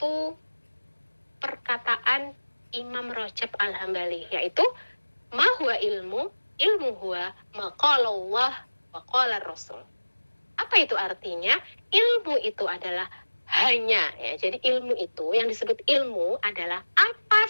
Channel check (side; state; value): both; inverted; correlation -1.00